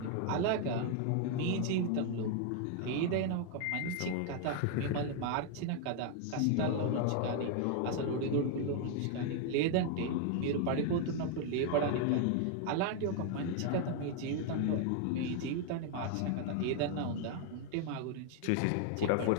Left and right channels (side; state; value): both; different; correlation 0.00